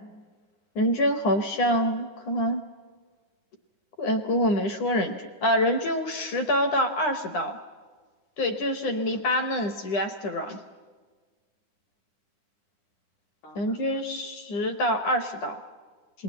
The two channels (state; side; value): late; right; 10 ms